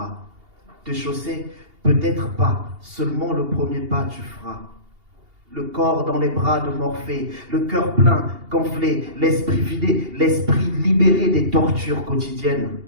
te chausser peut-être pas, seulement le premier pas tu feras. Le corps dans les bras de Morphée, le cœur plein, gonflé, l'esprit vidé, l'esprit libéré des tortures quotidiennes.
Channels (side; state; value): left; late; 2.8 ms